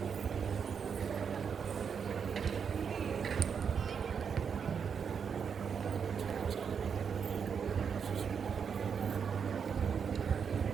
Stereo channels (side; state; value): left; quieter; 6.7 dB